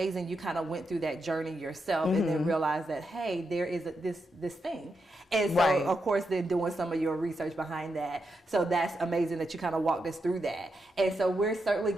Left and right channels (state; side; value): normal; both; correlation 0.84